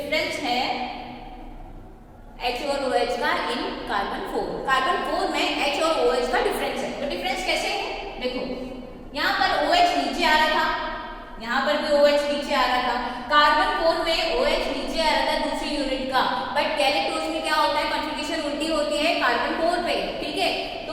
है H और OH का इन कार्बन 4। कार्बन 4 में H और OH का डिफरेंस है। तो डिफरेंस कैसे है, देखो यहाँ पर OH नीचे आ रहा था, यहाँ पर भी OH नीचे आ रहा था, कार्बन 4 में OH नीचे आ रहा था दूसरी यूनिट का, बट गैलेक्टोज में क्या होता है, कॉन्फ़िगरेशन उल्टी होती है कार्बन 4 पे, ठीक है।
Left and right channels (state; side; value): identical; both; correlation 1.00